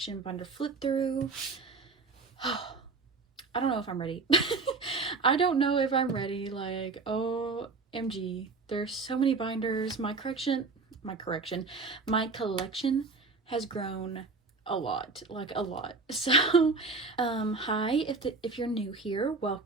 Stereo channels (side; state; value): left; quieter; 4.1 dB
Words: binder flip through. I don't know if I'm ready. I don't know if I'm ready. Like, OMG, there's so many binders. My collection has grown a lot, like a lot. So hi, if you're new here,